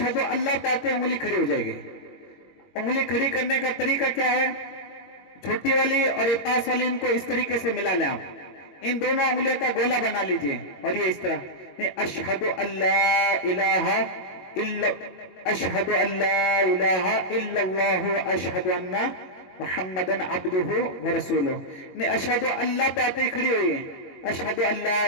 اللہ پاتے انگلی کھڑی ہو جائے گی. انگلی کھڑی کرنے کا طریقہ کیا ہے؟ چھوٹی والی اور یہ پاس والی ان کو اس طریقے سے ملا لیں. آپ ان دونوں انگلیوں کا گولا بنا لیجئے اور یہ اس طرح، اشہد اللہ الہ الا اشہد اللہ الہ الا اللہ اشہد ان محمدن عبدہ ورسولہ. اشہد اللہ پہ آتے ہی کھڑی ہوئی ہے، اشہد اللہ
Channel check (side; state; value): right; late; 22 ms